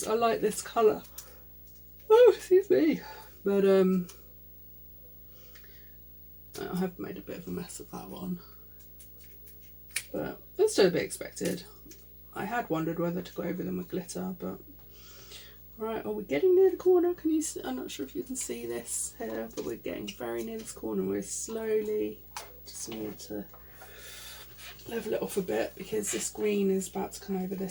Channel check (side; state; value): left; noise; hum, 21 dB below the sound